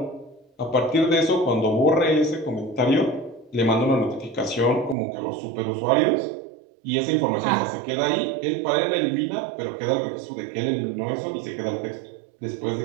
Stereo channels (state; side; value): drops out; left; at 5.0 s